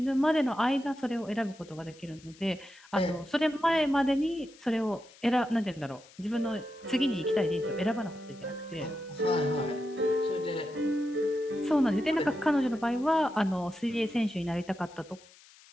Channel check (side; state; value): left; noise; hiss, 24 dB below the sound